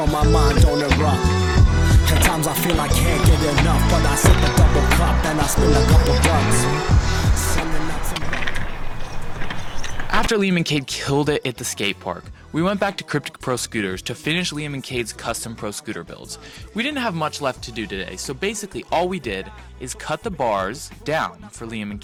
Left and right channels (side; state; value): both; identical; correlation 1.00